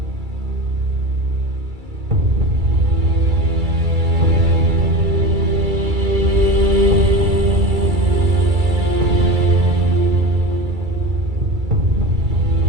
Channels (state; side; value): late; left; 2.3 ms